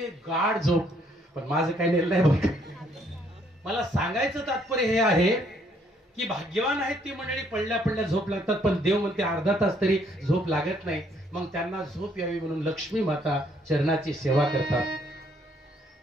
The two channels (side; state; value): both; normal; correlation 0.67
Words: गाढ झोप. पण माझं काही नेलं नाही बघ. मला सांगायचं तात्पर्य हे आहे की भाग्यवान आहेत ती मंडळी, पडल्या पडल्या झोप लागतात. पण देव म्हणते अर्धा तास तरी झोप लागत नाही. मग त्यांना झोप यावी म्हणून लक्ष्मी माता चरणाची सेवा करतात.